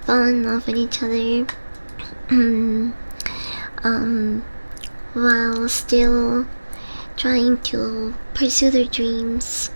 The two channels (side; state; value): both; inverted; correlation -1.00